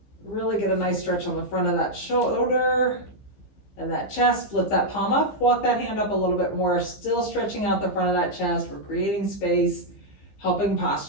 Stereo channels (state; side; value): late; right; 15 ms